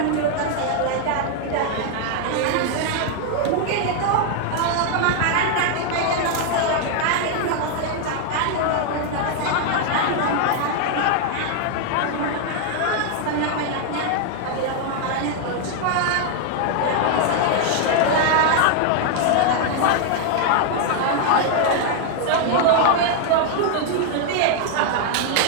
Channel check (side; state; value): both; different; correlation 0.00